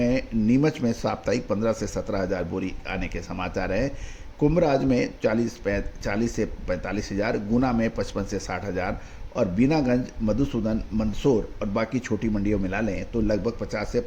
नीमच में साप्ताहिक 15 से 17,000 बोरी आने के समाचार हैं। कुंभराज में 40 से 45,000, गुना में 55 से 60,000, और बीनागंज, मधुसूदन, मंदसौर और बाकी छोटी मंडियों मिला लें तो लगभग 50 से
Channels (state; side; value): identical; both; correlation 1.00